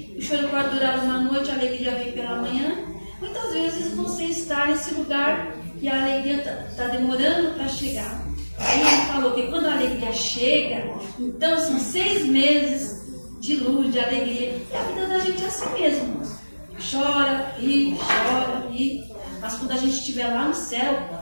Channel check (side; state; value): both; inverted; correlation -1.00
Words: o choro pode durar uma noite, a alegria vem pela manhã. Muitas vezes você está nesse lugar e a alegria está demorando para chegar. Aí ele falou que quando a alegria chega, então são 6 meses de luz, de alegria. E a vida da gente é assim mesmo. Chora, ri, mas quando a gente estiver lá no céu,